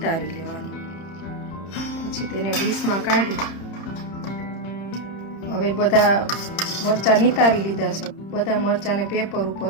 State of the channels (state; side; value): late; right; 30 ms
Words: લેવાનું। પછી તેને ડીશમાં કાઢી હવે બધા મરચાં નિતારી લીધા છે। બધા મરચાંને પેપર